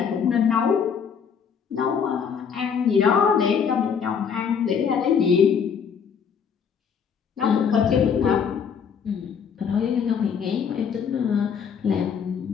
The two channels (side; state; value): right; quieter; 7.0 dB